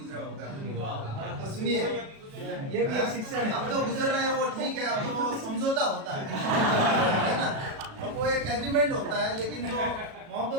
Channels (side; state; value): left; late; 37 ms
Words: होगा। तो सुनिए, ये भी एक शिक्षा है। अब तो गुजर रहे हैं वो ठीक है, अब तो वो समझौता होता है ना, अब वो एक एग्रीमेंट होता है, लेकिन जो